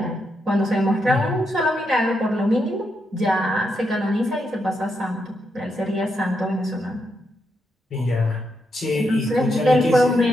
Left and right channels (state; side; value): normal; both; correlation 0.81